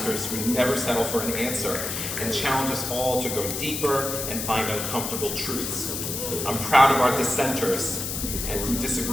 who never settle for an answer and challenge us all to go deeper and find uncomfortable truths. I'm proud of our dissenters and who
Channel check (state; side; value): noise; left; hiss, 4 dB below the sound